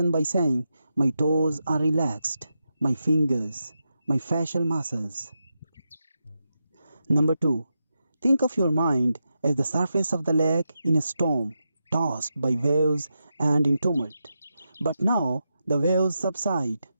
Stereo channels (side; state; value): both; inverted; correlation -0.87